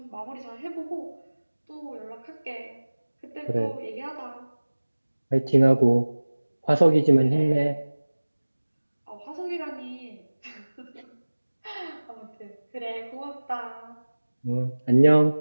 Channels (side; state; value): both; inverted; correlation -1.00